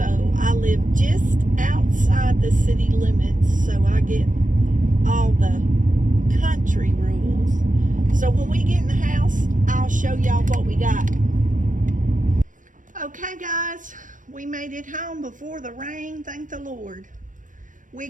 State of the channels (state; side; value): late; left; 0.38 ms